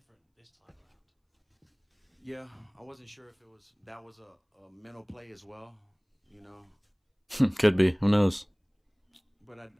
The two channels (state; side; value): identical; both; correlation 1.00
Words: this time around. Yeah, I wasn't sure if that was a mental play as well, you know. Could be. Who knows? But